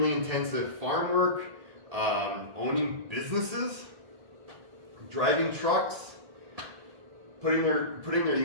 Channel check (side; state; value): left; late; 1.8 ms